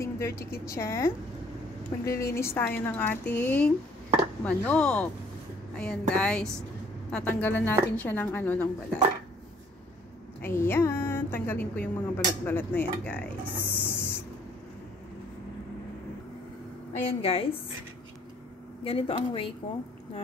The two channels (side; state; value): both; normal; correlation 0.60